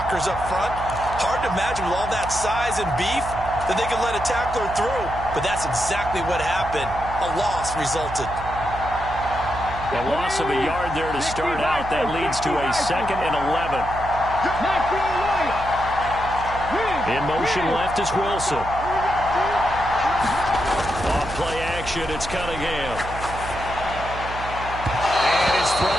up front. Hard to imagine with all that size and beef that they could let a tackler through, but that's exactly what happened. A loss resulted. A loss of a yard there to start out. That leads to a 2nd and 11. In motion left is Wilson. Off play action, it's Cunningham. And his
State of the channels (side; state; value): right; noise; hum, 10 dB below the sound